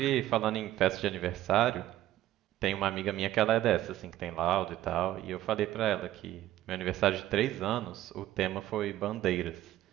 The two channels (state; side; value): quieter; left; 13.9 dB